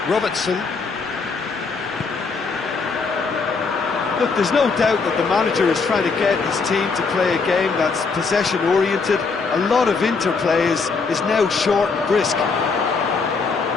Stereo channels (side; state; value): right; quieter; 4.6 dB